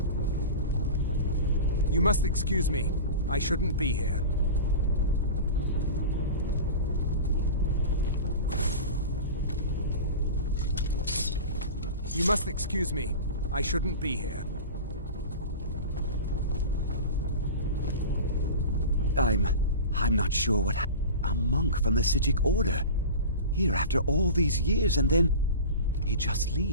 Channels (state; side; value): inverted; both; correlation -0.31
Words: You must excuse me. I shouldn't be here. You must excuse me. I shouldn't be here. I'm not sure what a monk from the Psijic Order. Here after all these years, and then he just